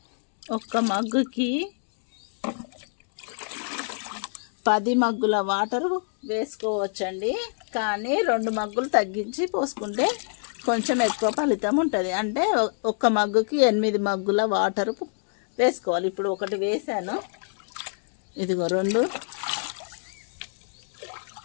ఒక్క మగ్గుకి 10 మగ్గుల వాటర్ వేసుకోవచ్చండి. కానీ 2 మగ్గులు తగ్గించి పోసుకుంటే కొంచెం ఎక్కువ ఫలితం ఉంటుంది. అంటే ఒక్క మగ్గుకి 8 మగ్గుల వాటర్ వేసుకోవాలి. ఇప్పుడు ఒకటి వేసాను, ఇదిగో 2,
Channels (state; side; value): silent; right; digital silence